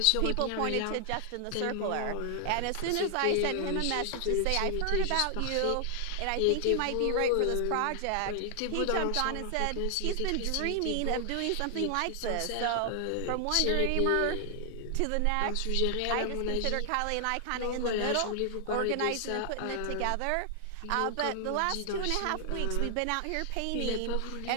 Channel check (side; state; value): both; different; correlation 0.00